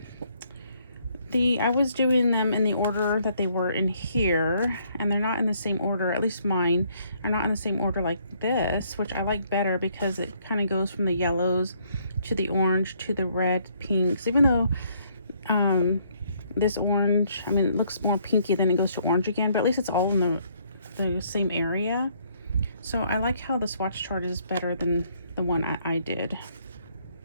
was doing them in the order that they were in here, and they're not in the same order. At least mine are not in the same order like this, which I like better because it kind of goes from the yellows to the orange to the red, pinks. Even though this orange, I mean, it looks more pinky, then it goes to orange again, but at least it's all in the same area. So I like how the swatch chart is better than the one I did.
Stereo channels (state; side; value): inverted; both; correlation -0.67